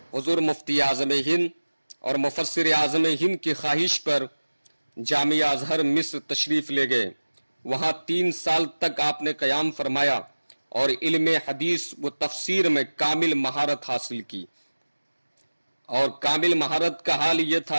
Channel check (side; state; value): both; inverted; correlation -1.00